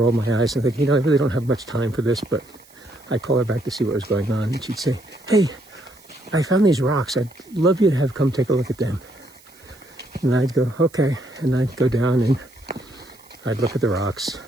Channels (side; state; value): right; noise; hiss, 26 dB below the sound